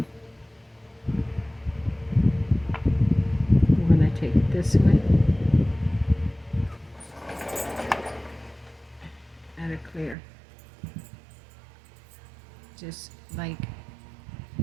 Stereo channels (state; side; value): drops out; left; at 10.2 s